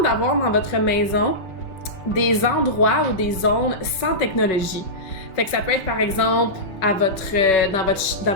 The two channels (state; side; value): late; right; 5.2 ms